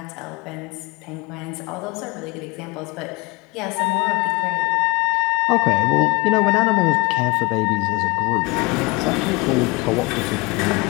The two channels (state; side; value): quieter; right; 26.4 dB